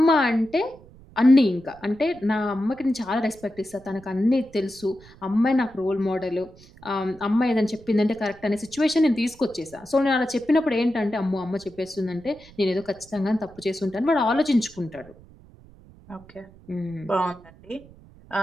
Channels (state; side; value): noise; right; rumble, 23 dB below the sound